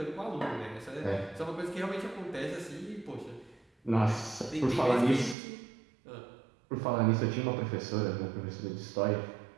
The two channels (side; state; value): left; drops out; at 5.4 s